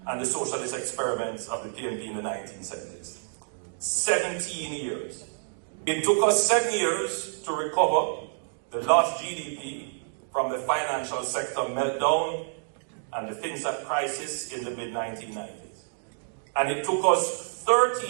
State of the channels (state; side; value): silent; left; digital silence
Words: and the socialist experiments of the PNP in the 1970s. 17 years. It took us 7 years to recover the lost GDP from the financial sector meltdown and the FinSat crisis in the mid-1990s. And it took us